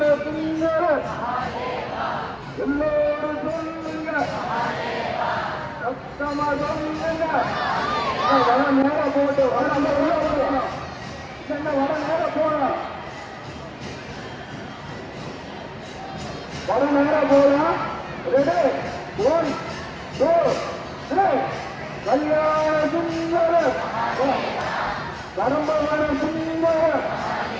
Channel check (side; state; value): both; identical; correlation 1.00